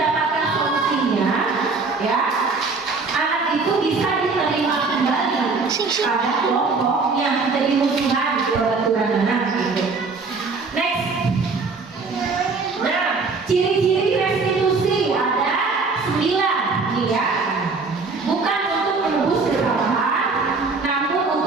solusinya, ya, anak itu bisa diterima kembali pada kelompok yang menjadi musuhan di aturan anak. Gitu. Next, nah, ciri-ciri restitusi ada 9 nih ya. Bukan untuk menebus kesalahan, namun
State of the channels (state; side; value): quieter; left; 4.2 dB